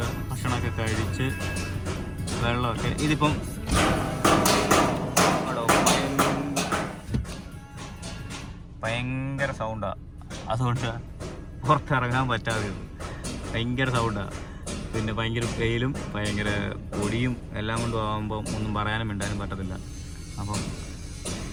ഭക്ഷണമൊക്കെ കഴിച്ച് വെള്ളമൊക്കെ ഇതിപ്പം ഭയങ്കര സൗണ്ടാണ്. അതുകൊണ്ട് പുറത്തിറങ്ങാൻ പറ്റാതെ ഭയങ്കര സൗണ്ടാണ്. പിന്നെ ഭയങ്കര വെയിലും ഭയങ്കര പൊടിയും എല്ലാം കൊണ്ടും ആകുമ്പം ഒന്നും പറയാനും മിണ്ടാനും പറ്റത്തില്ല. അപ്പം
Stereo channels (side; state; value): both; identical; correlation 1.00